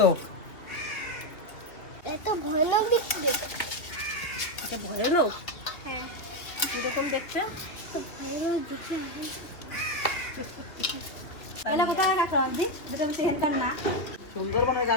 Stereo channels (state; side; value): late; right; 2.8 ms